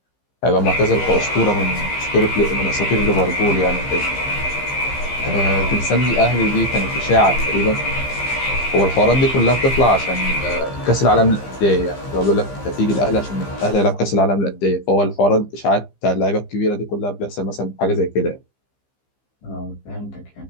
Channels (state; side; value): late; right; 15 ms